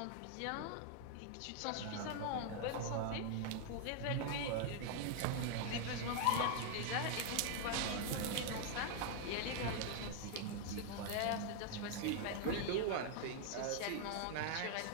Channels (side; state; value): both; different; correlation 0.00